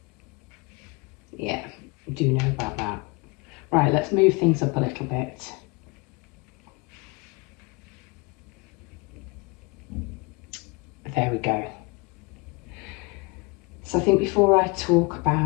Yeah, do know about that. Right, let's move things up a little bit. There we go. So I think before I talk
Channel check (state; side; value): quieter; right; 27.6 dB